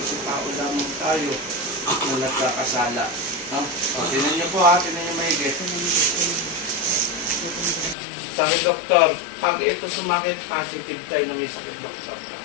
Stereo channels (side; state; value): right; drops out; at 8.0 s